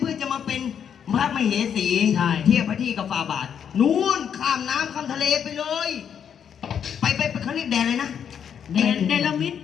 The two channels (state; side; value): quieter; right; 8.2 dB